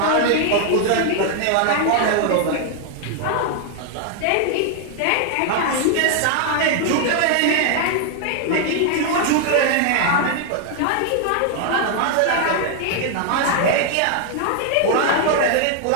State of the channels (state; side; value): different; both; correlation 0.00